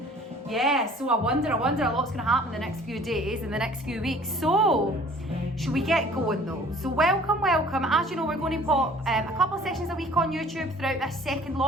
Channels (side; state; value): both; normal; correlation 0.51